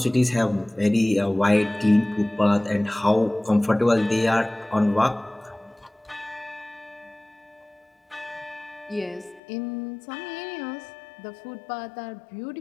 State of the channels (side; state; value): right; drops out; at 9.4 s